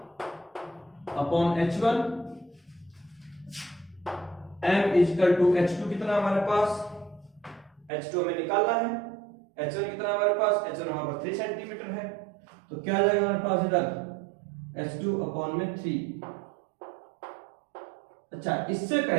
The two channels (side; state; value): left; drops out; at 7.9 s